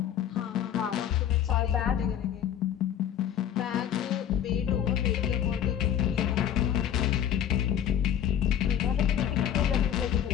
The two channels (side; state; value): right; quieter; 9.9 dB